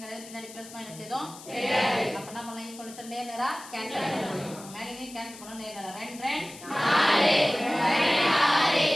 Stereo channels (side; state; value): left; noise; hiss, 17 dB below the sound